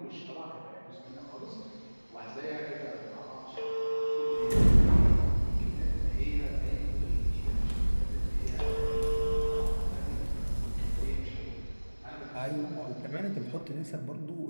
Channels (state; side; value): inverted; both; correlation -1.00